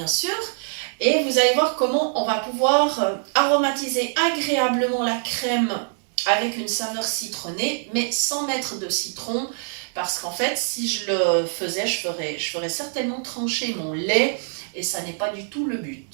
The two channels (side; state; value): left; silent; digital silence